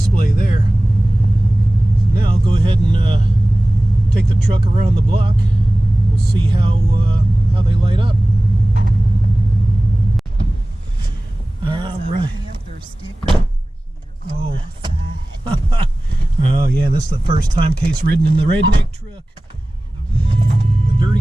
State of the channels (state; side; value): normal; both; correlation 0.98